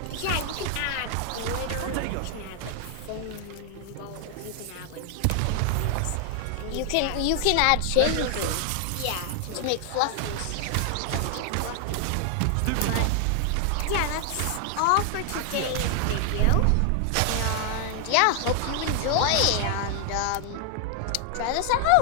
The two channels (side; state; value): both; different; correlation 0.00